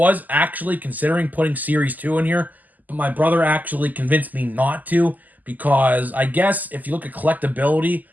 actually considering putting Series 2 in here, but my brother actually convinced me not to because I guess if you look at collectability,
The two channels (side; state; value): left; late; 0.082 ms